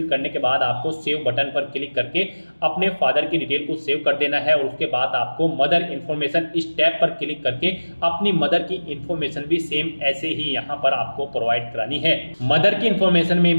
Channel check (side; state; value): both; inverted; correlation -1.00